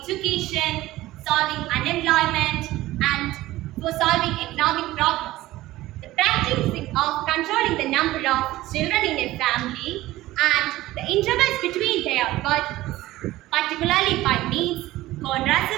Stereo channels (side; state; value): left; quieter; 16.7 dB